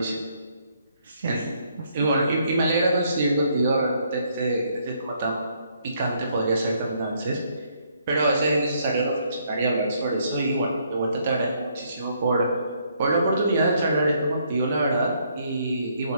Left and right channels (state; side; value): inverted; both; correlation -0.70